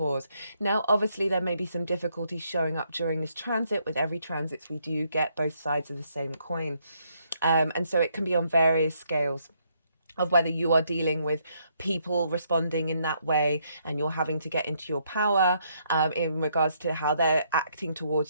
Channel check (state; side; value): inverted; both; correlation -0.73